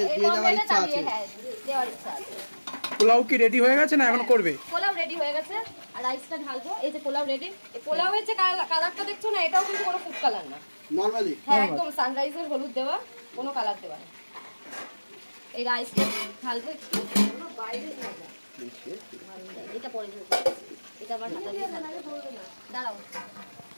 দেওয়ার ইচ্ছা আছে। পোলাও কি রেডি হয়ে গেছে না এখন করবে? পোলাও রেডি হয়ে গেছে, আর রাইসটা ঢালবো। এই যে পোলাও রেডি। এই পোলাওয়ের যে কালারটা দেখছো না, এটাও কিন্তু কোনো ফুড কালার না, নরমালি। হ্যাঁ, একদম সানরাইজের হলুদ দেওয়া, কোনো কালার দেওয়া না। এই রাইসটা ঢালবো একটু, বাইরে না যা, এটা পরে এটা আবার হাতা দিয়ে দাঁড়াও।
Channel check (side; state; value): both; inverted; correlation -1.00